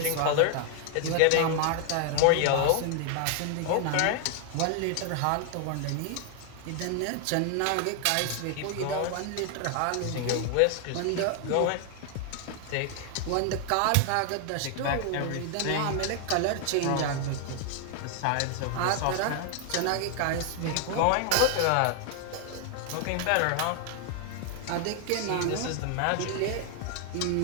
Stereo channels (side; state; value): both; different; correlation 0.00